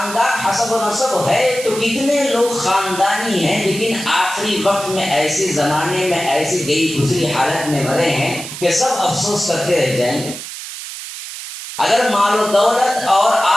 حسب و نسب ہے تو کتنے لوگ خاندانی ہیں لیکن آخری وقت میں ایسے زمانے میں ایسی گئی گزری حالت میں مرے ہیں کہ سب افسوس کرتے رہ جائیں گے۔ اگر مال و دولت اور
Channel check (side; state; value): right; noise; hiss, 10 dB below the sound